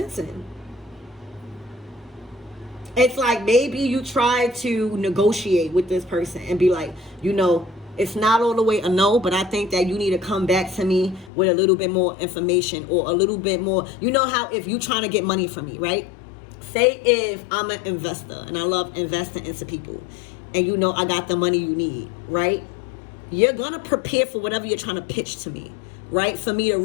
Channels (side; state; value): right; drops out; at 11.3 s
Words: in. It's like maybe you try to negotiate with this person and be like, you know, it's not all the way a no, but I think that you need to come back to me with a little bit more information, or a little bit more. You know how if you trying to get money from me, right? Say if I'm an investor and I love investing into people, and you know I got the money you need, right? You're gonna prepare for whatever you're trying to pitch to me, right? For me to